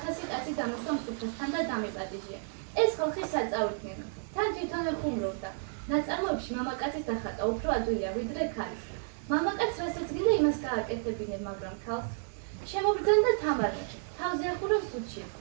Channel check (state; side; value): silent; left; 57 dB below the other